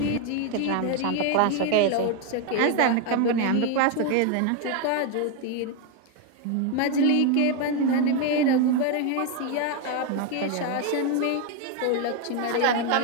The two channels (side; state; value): both; different; correlation 0.01